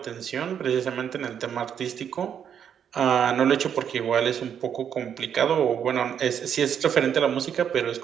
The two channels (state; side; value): quieter; left; 8.4 dB